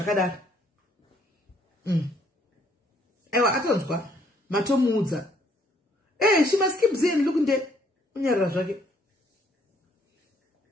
Aiwa atonzwa matomuudza. She must keep saying look nde unyarara zvake.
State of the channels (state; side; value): normal; both; correlation 0.65